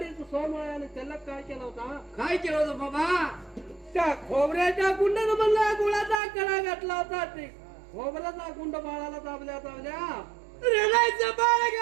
सोमळ्याने त्याला काय केलं होता? काय केलं होतं बाबा? त्या खोबऱ्याच्या गुंडानं म्हणला गुळाचा कडा घातला होता. ते खोबऱ्याचा गुंड बाळाला दाबल्या रडायचं बाळ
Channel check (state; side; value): drops out; left; at 6.2 s